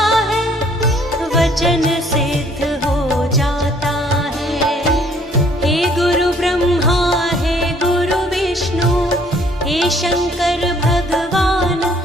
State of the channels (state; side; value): normal; both; correlation 0.61